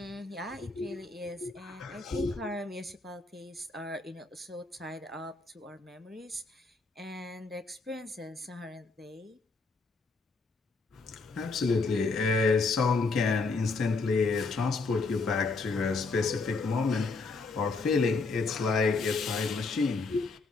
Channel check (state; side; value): quieter; right; 4.0 dB